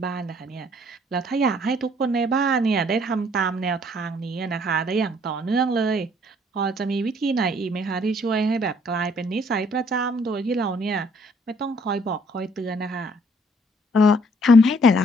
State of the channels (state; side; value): normal; both; correlation 0.63